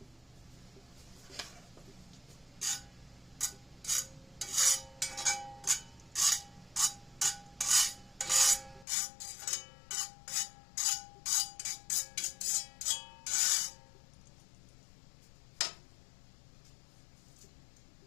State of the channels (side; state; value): right; drops out; at 8.8 s